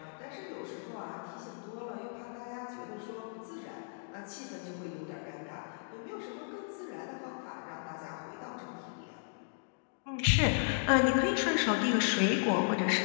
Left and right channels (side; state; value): right; silent; digital silence